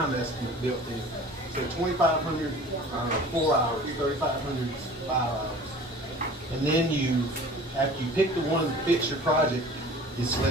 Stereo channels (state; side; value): normal; both; correlation 0.44